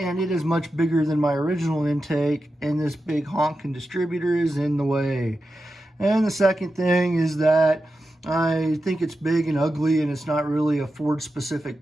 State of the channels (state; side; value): normal; both; correlation 0.91